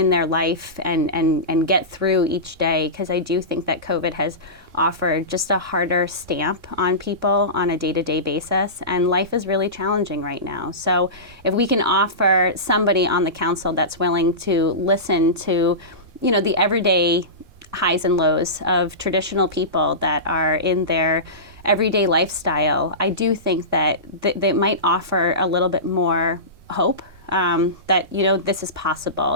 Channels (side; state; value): left; late; 3.6 ms